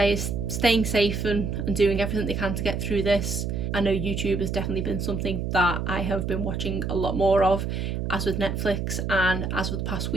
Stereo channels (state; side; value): noise; right; hum, 2 dB below the sound